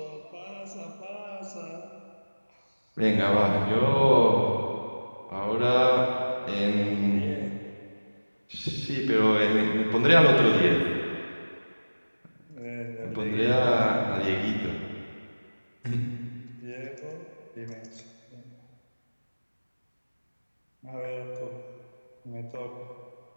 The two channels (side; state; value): both; inverted; correlation -1.00